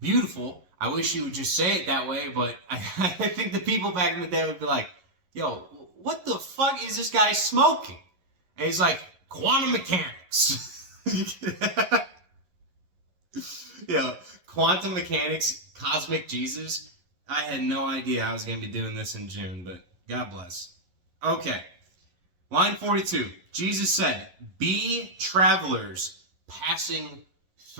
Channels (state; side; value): late; left; 11 ms